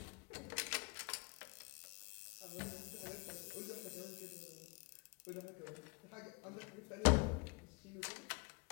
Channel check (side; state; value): right; quieter; 29.7 dB